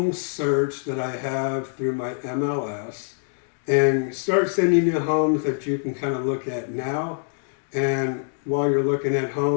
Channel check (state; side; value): silent; right; 62 dB below the other